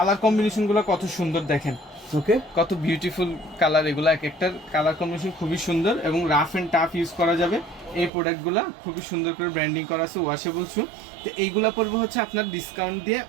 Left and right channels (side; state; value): left; drops out; at 8.1 s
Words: কম্বিনেশন গুলো কত সুন্দর দেখেন, ওকে, কত বিউটিফুল কালার, এগুলো এক একটার কালার কম্বিনেশন খুবই সুন্দর এবং রাফ এন্ড টাফ ইউজ করা যাবে। এই প্রোডাক্টগুলো খুবই সুন্দর করে ব্র্যান্ডিং করা আছে, ওয়াশেবল শু। তো এইগুলা পড়বে হচ্ছে আপনার ডিসকাউন্ট দিয়ে